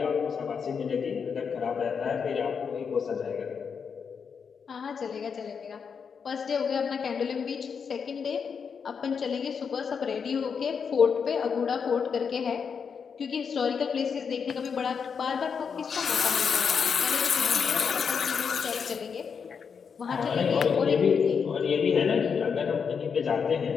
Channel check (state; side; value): quieter; right; 6.3 dB